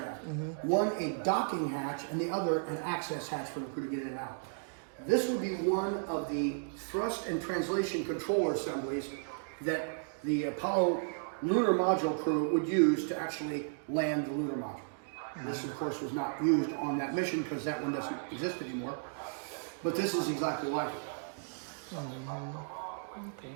One a docking hatch, and the other an access hatch for the crew to get in and out. This would be one of the thrust and translation controller assemblies that the Apollo lunar module crew would use to actually land the lunar module. This, of course, was not used on that mission because that one doesn't exist anymore. But this is exactly like it. Okay.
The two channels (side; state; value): left; silent; digital silence